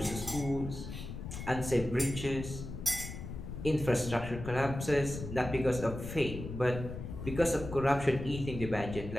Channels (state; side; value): noise; left; rumble, 8 dB below the sound